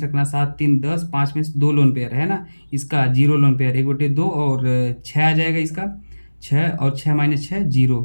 रखना 7 3 10, 5 में 2 लोन पेयर है ना, इसका 0 लोन पेयर 1/2, और 6 आ जाएगा इसका 6, और 6 - 6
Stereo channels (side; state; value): both; inverted; correlation -1.00